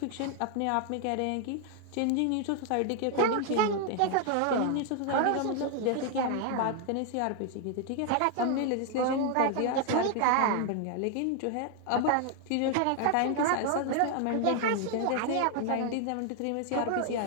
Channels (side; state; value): both; different; correlation 0.00